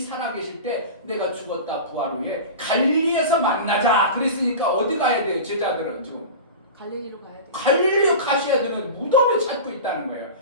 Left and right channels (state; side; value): inverted; both; correlation -0.30